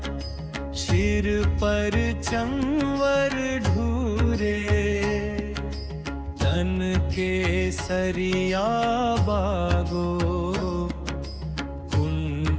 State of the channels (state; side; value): identical; both; correlation 1.00